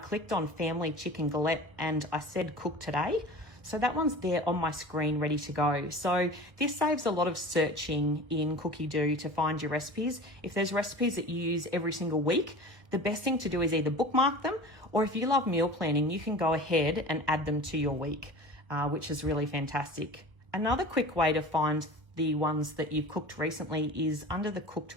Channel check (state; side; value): late; left; 1.1 ms